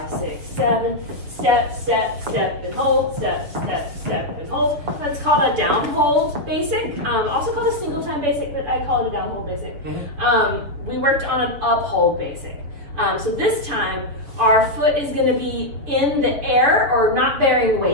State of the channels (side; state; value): left; late; 7.2 ms